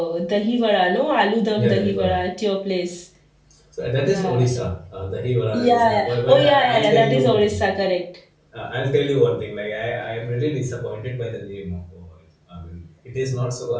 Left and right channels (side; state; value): both; identical; correlation 1.00